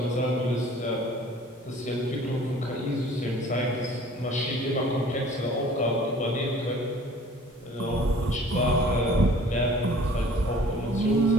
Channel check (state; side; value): normal; both; correlation 0.50